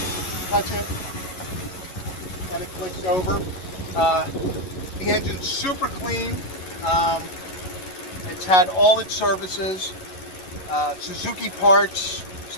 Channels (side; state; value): right; late; 11 ms